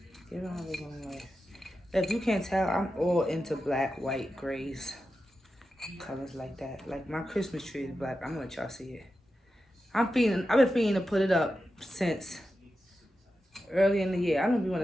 Giving my living room life. If you can't tell, I'm all into black, white, grays, colors like that. Like my Christmas tree is black. I'm gonna let y'all see it. I've been feeling to put it up since early in the year. I don't be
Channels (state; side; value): normal; both; correlation 0.91